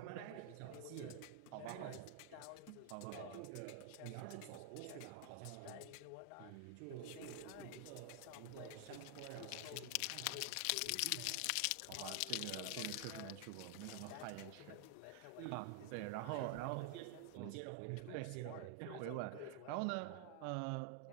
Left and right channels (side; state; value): both; different; correlation 0.00